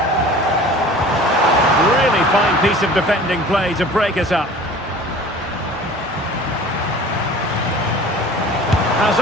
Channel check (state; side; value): normal; both; correlation 0.43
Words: Really fine piece of defending play to break us up. Has